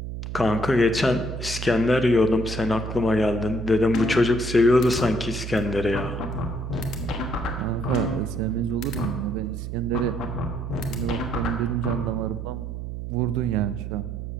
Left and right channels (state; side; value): noise; right; hum, 7 dB below the sound